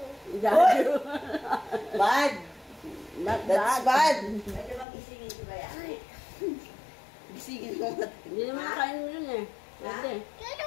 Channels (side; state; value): right; drops out; at 4.9 s